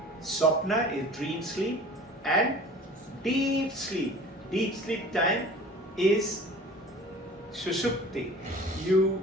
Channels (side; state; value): both; normal; correlation 0.43